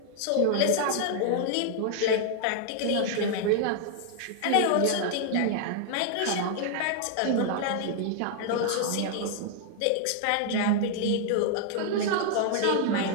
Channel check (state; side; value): different; both; correlation 0.00